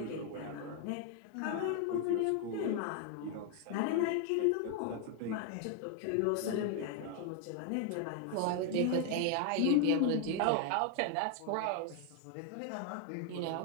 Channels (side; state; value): both; different; correlation 0.01